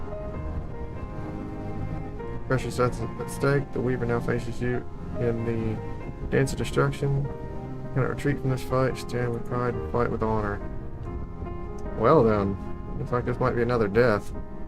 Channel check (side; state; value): both; identical; correlation 1.00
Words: Precious that's at stake. The Weaver now faces you in the dance of destruction. Cannot retreat from this fight. Stand with pride and fight with honor. Well then, looks like this might be another death.